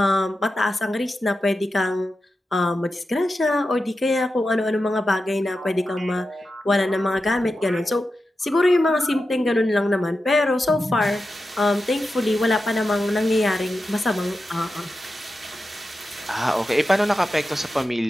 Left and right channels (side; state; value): both; normal; correlation 0.91